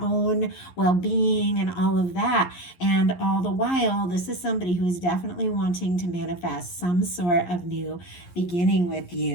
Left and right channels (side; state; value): right; late; 11 ms